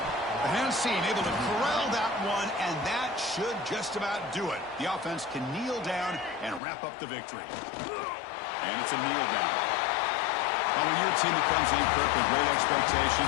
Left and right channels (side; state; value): right; drops out; at 6.6 s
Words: The hands team able to corral that one, and that should just about do it. The offense can kneel down and wrap up the victory. And it's a kneel down. Well, when you're a team that comes in, Kirk, with great